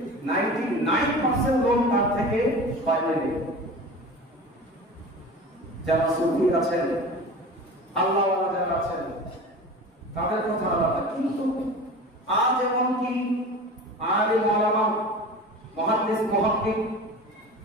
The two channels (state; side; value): normal; both; correlation 0.35